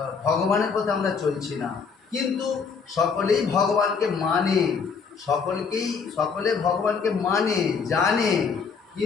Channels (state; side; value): quieter; right; 5.6 dB